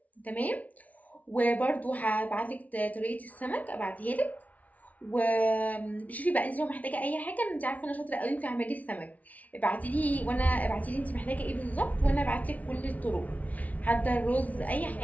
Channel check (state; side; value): late; right; 0.071 ms